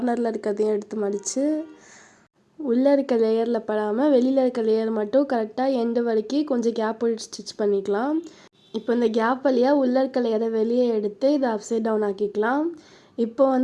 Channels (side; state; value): both; identical; correlation 1.00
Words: இருக்கிறதையும் எடுத்து மடித்து உள்ளே இருக்க லேயரில் படாமல் வெளியில் இருக்க லேயர் மட்டும் கரெக்டாக எண்டு வரைக்கும் கொஞ்சம் கேப் விட்டு ஸ்டிச் பண்ணிக்கலாம். இப்போ இந்த கேப் வழியாக உள்ளே இருக்க லேயரை வெளியே எடுத்து இதை அப்சைட் டவுன் ஆக்கிக்கலாம். இப்போ